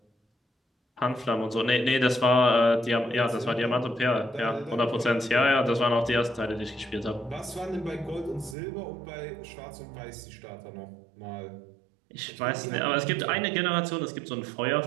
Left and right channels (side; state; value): left; drops out; at 8.6 s